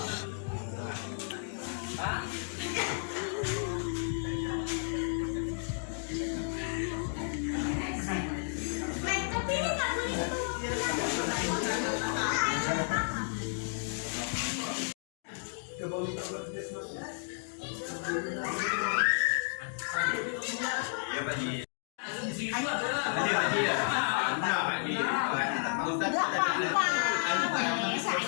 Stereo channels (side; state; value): right; silent; digital silence